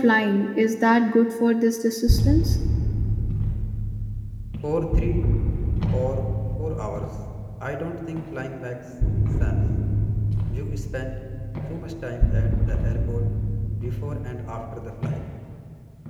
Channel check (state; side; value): identical; both; correlation 1.00